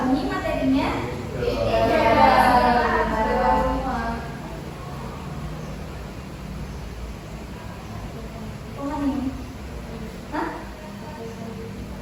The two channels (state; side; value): identical; both; correlation 1.00